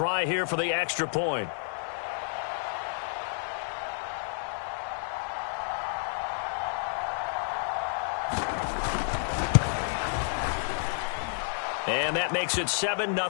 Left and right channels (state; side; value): silent; right; digital silence